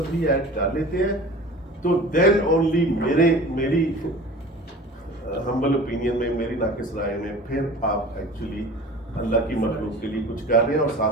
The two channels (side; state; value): both; normal; correlation 0.40